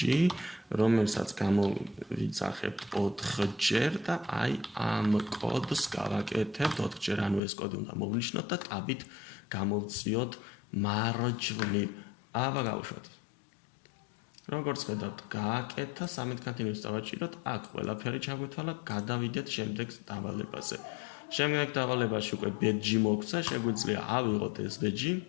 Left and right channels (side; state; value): right; drops out; at 7.4 s